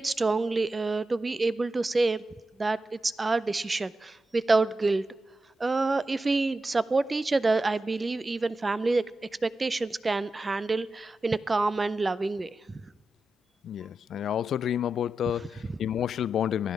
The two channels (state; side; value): normal; both; correlation 0.90